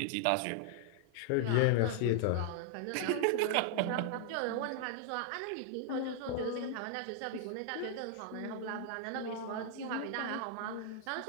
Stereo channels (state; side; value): different; both; correlation 0.00